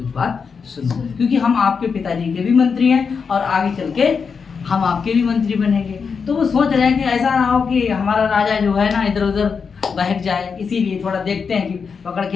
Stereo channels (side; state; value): right; quieter; 5.7 dB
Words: बात सुनो, क्योंकि हम आपके पिताजी के भी मंत्री हैं और आगे चल के हम आपके भी मंत्री बनेंगे। तो वो सोच रहे हैं कि ऐसा ना हो कि हमारा राजा जो है ना इधर उधर बहक जाए, इसीलिए थोड़ा देखते हैं कि पकड़